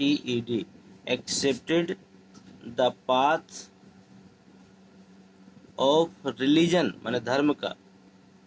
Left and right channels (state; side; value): identical; both; correlation 1.00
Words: accepted the path of religion, माने धर्म का,